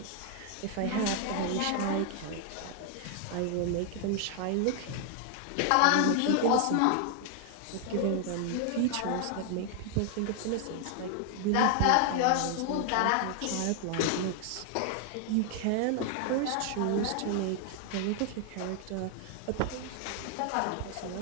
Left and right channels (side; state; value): both; different; correlation 0.00